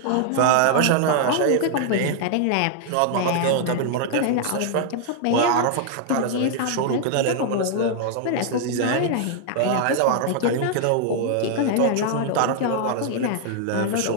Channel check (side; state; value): both; different; correlation -0.01